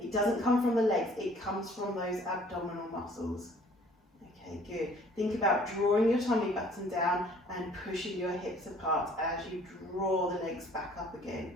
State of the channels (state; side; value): normal; both; correlation 0.55